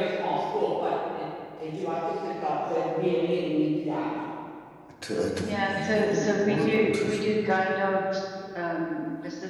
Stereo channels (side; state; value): both; identical; correlation 1.00